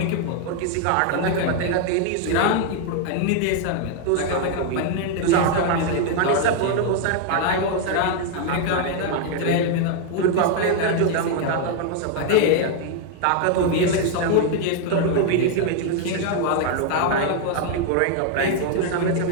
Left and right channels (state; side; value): different; both; correlation 0.00